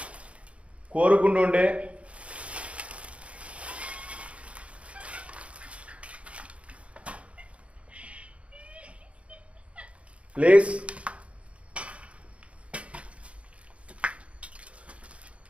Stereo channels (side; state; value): left; late; 0.062 ms